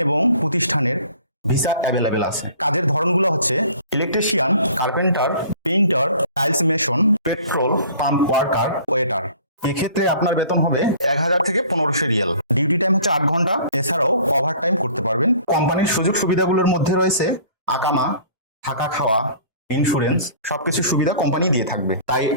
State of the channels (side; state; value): both; inverted; correlation -0.49